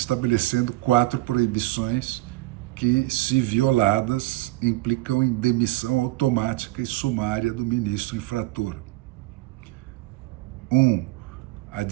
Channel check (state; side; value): quieter; left; 19.4 dB